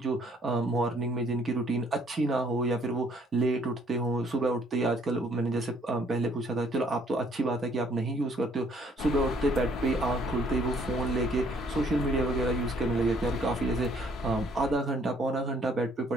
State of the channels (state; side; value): normal; both; correlation 0.64